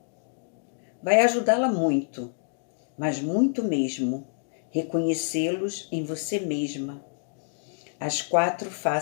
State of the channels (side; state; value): right; silent; digital silence